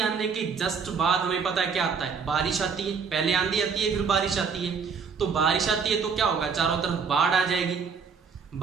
आने के जस्ट बाद हमें पता है क्या आता है? बारिश आती है। पहले आंधी आती है, फिर बारिश आती है। तो बारिश आती है तो क्या होगा? चारों तरफ बाढ़ आ जाएगी।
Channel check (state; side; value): quieter; left; 5.8 dB